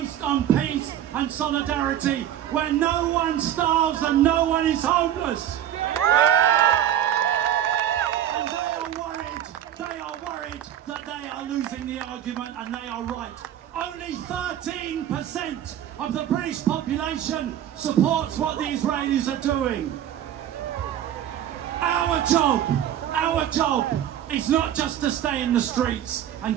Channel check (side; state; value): left; quieter; 10.9 dB